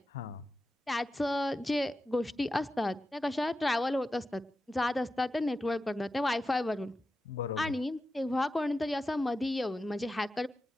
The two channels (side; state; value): both; normal; correlation 0.92